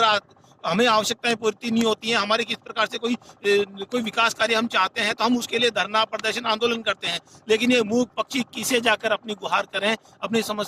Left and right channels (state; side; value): identical; both; correlation 1.00